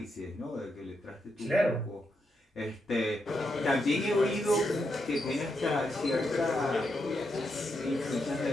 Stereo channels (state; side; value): normal; both; correlation 0.83